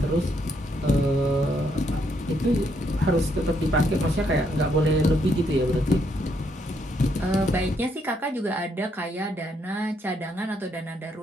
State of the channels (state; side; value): normal; both; correlation 0.74